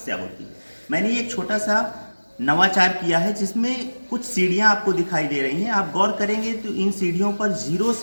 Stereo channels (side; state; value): both; inverted; correlation -1.00